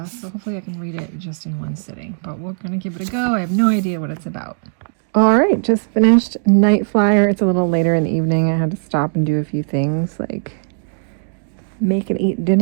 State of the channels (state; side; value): silent; left; 67 dB below the other